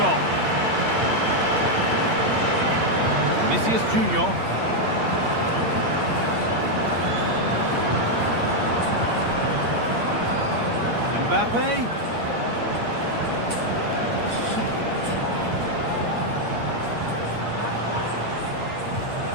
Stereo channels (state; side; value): late; left; 8.7 ms